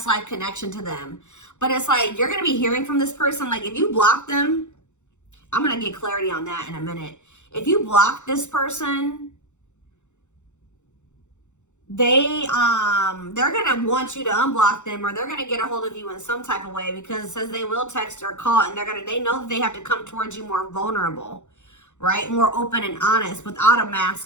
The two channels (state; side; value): late; right; 0.84 ms